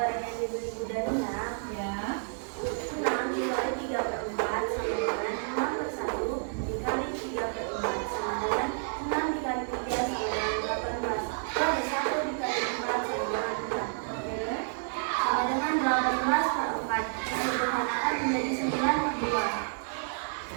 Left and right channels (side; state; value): left; silent; 58 dB below the other